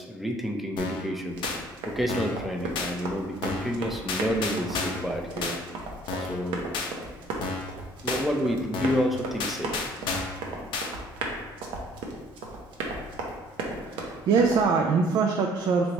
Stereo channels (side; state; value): both; normal; correlation 0.57